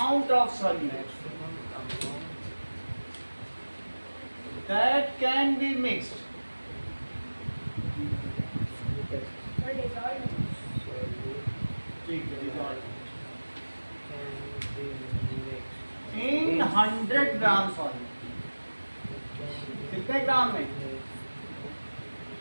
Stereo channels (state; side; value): inverted; both; correlation -1.00